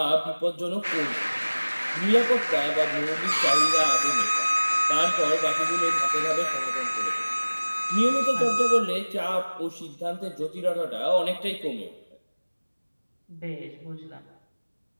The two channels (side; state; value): both; inverted; correlation -1.00